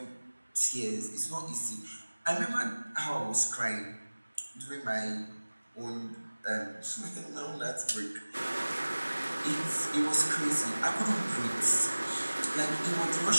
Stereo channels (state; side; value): inverted; both; correlation -1.00